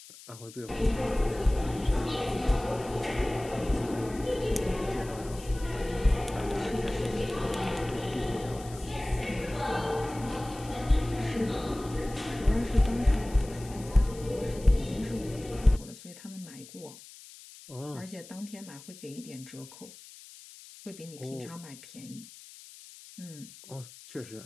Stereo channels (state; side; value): noise; left; hiss, 18 dB below the sound